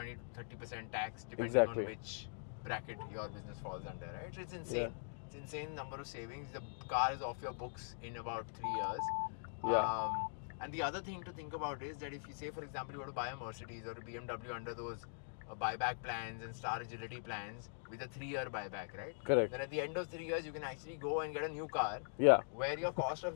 to 30% tax depending on which bracket your business falls under, right? So it's insane. It's insane number of savings. The car is off your books in about 3 years. And the other thing to think about is that if you say, for example, you were to buy a Mercedes or a BMW under those buyback plans and Star Agility plans with a 3-year buyback, right? Correct. Then at the end of 3 years, you can actually go and get a new car where your cost of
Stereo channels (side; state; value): right; silent; digital silence